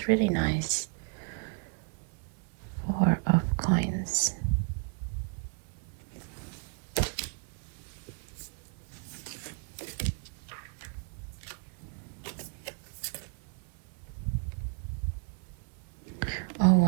really nice. 4 of coins. Oh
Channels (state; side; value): quieter; left; 33.6 dB